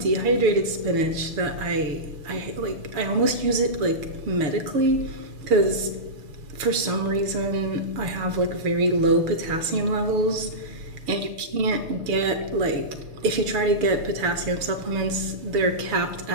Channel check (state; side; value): late; left; 6.5 ms